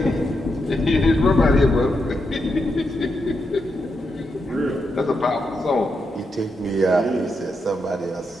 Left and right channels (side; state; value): both; normal; correlation 0.83